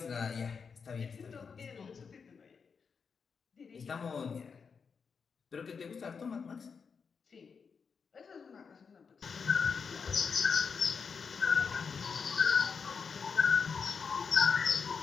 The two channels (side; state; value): right; quieter; 5.8 dB